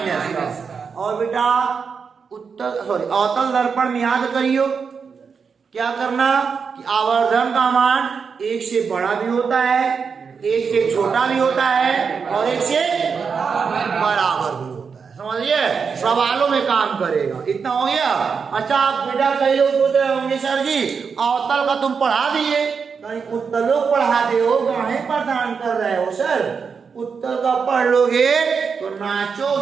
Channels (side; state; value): left; quieter; 5.8 dB